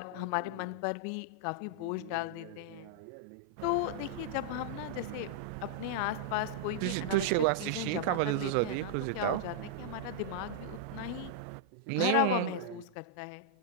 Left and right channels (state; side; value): different; both; correlation -0.02